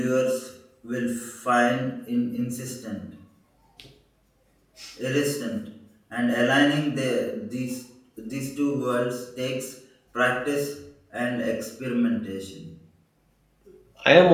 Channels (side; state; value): both; identical; correlation 1.00